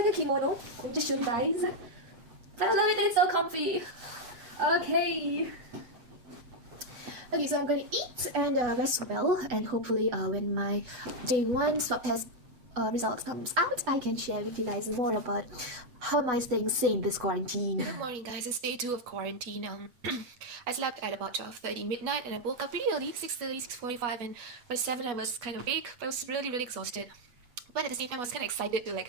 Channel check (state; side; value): late; left; 8.3 ms